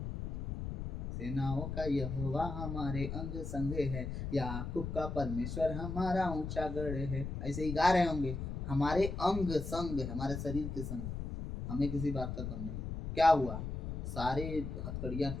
सेनाओं का यहोवा हमारे अंग संग है, याकूब का परमेश्वर हमारा ऊंचा गढ़ है। ऐसे ही गा रहे होंगे, हमारे अंग संग, हमारे शरीर के संग, हमें किसी बात का कम नहीं। क्या हुआ? सारे हथकड़ियां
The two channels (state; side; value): noise; left; rumble, 5 dB below the sound